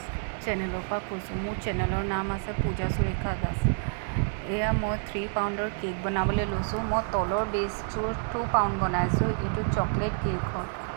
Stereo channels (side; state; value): left; silent; 57 dB below the other